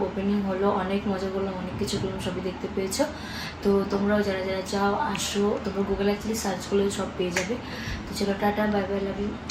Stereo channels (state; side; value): identical; both; correlation 1.00